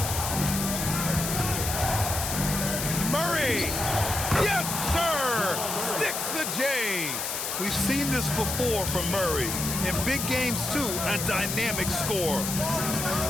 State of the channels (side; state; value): left; noise; hiss, 3 dB below the sound